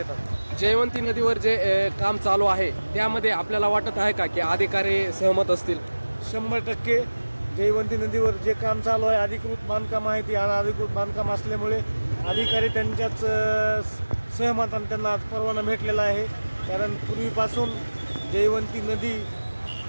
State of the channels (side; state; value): both; inverted; correlation -1.00